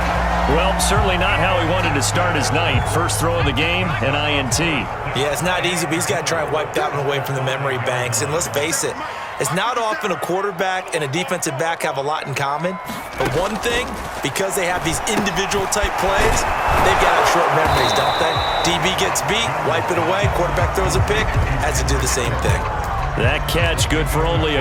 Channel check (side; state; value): both; identical; correlation 1.00